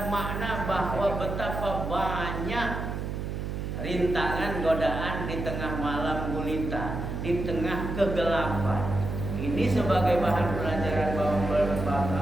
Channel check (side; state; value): right; noise; hum, 4 dB below the sound